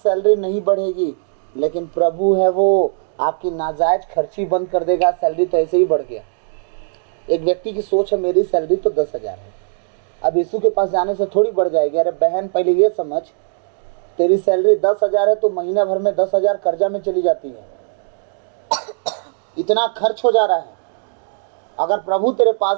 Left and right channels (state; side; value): silent; left; digital silence